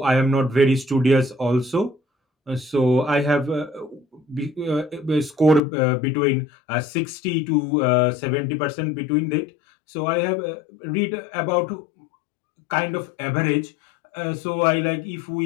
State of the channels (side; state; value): right; drops out; at 5.6 s